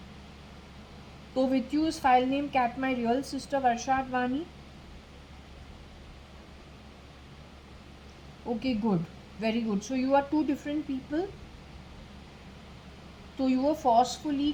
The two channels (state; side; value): identical; both; correlation 1.00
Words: So with you is file name cat my real sister JAYA.ADVANI? Okay, good. Very good. So you are two different people. So you were forcefully